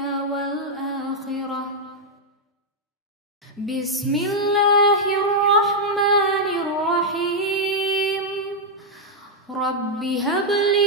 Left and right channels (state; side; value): normal; both; correlation -0.03